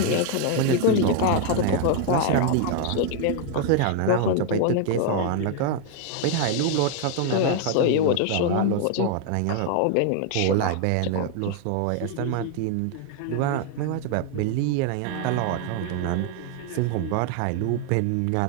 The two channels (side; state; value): both; different; correlation 0.00